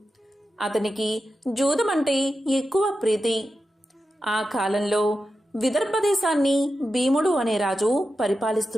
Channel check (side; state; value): both; normal; correlation 0.91